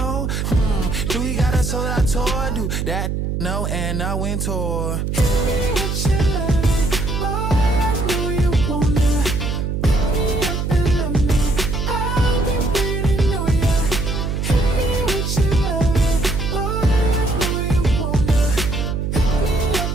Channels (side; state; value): right; noise; hum, 1 dB below the sound